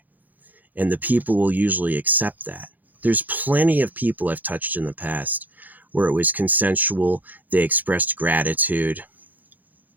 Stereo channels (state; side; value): late; left; 0.083 ms